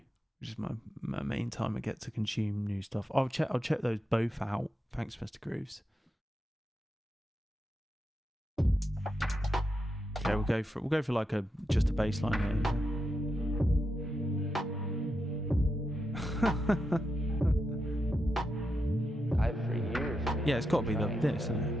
which is my main time I get to consume new stuff. I'll check those both out. Thanks, Mr. Grooves. Okay, we'll go for like just a bass line here. I've for years. Yeah, it's got to be this, isn't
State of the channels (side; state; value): both; normal; correlation 0.86